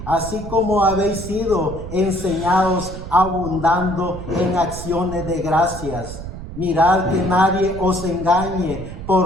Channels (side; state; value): right; noise; rumble, 10 dB below the sound